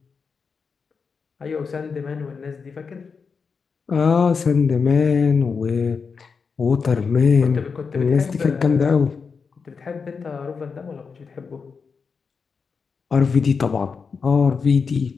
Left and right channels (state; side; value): quieter; right; 5.4 dB